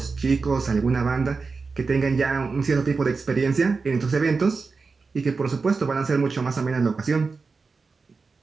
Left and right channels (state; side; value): quieter; left; 4.4 dB